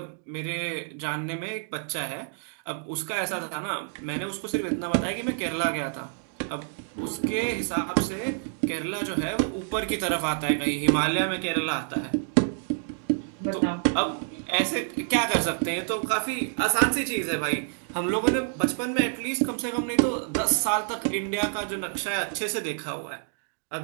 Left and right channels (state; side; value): silent; left; 59 dB below the other